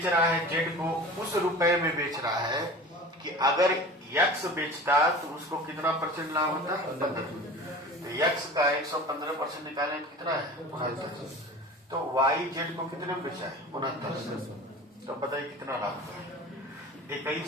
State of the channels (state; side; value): normal; both; correlation 0.37